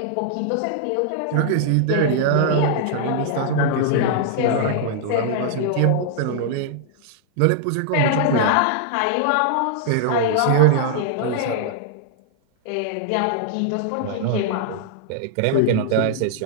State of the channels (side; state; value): both; different; correlation -0.01